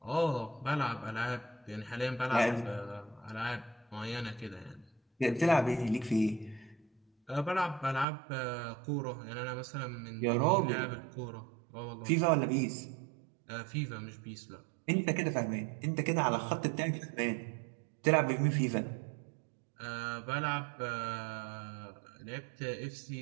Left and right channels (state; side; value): drops out; left; at 8.1 s